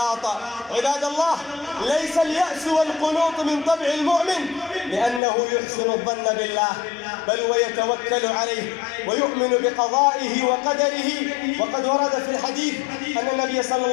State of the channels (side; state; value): right; drops out; at 5.2 s